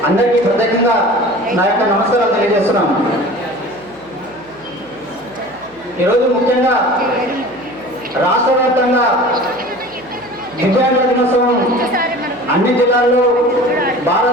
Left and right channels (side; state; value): right; noise; hum, 28 dB below the sound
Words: అందరికీ ప్రత్యేకంగా నా యొక్క నమస్కారాలు తెలియజేస్తున్నాను. ఈరోజు ముఖ్యంగా రాష్ట్ర వ్యాప్తంగా దివ్యాంగుల దినోత్సవం అన్ని జిల్లాల్లో